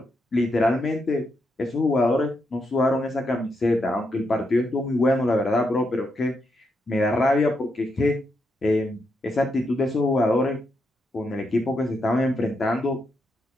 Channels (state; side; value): normal; both; correlation 0.81